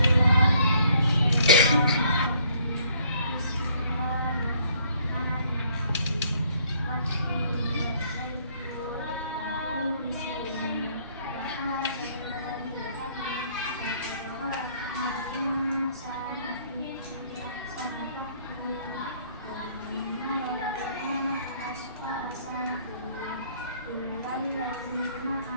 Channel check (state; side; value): inverted; both; correlation -0.63